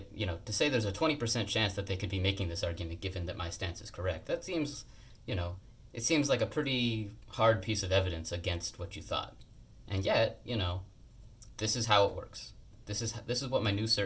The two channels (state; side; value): identical; both; correlation 1.00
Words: to say there's a 20% chance that they could be making this argument given that my stance is correct, that seems, it seems like a pretty hard piece of evidence against what you thought. And yet, this is how it works. This is what my new